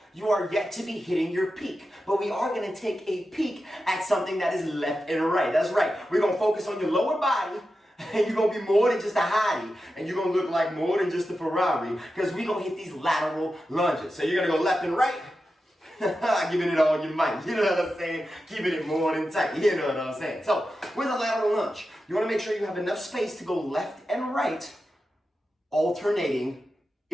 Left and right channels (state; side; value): normal; both; correlation 0.91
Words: you are yet to be hitting your peak. But we are going to take a peek at something that is left and right. That's right. We're going to focus on your lower body. And you're going to be more than just a hottie. And you're going to look like more than just a Ferrari. Because we're going to hit these lateral lunges. So you're going to go left and right. Giving it all you might. You know what I'm saying? Keeping it more than tight. You know what I'm saying? So with a lateral lunge, you want to make sure you have enough space to go left and right. Alternating